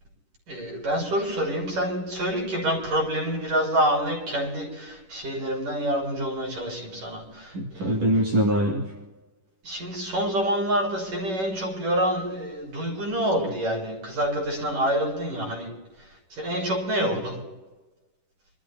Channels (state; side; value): late; left; 10 ms